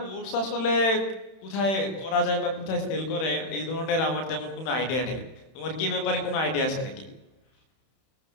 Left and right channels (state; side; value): late; right; 31 ms